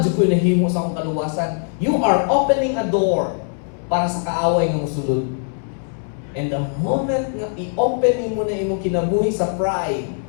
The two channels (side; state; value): right; silent; 65 dB below the other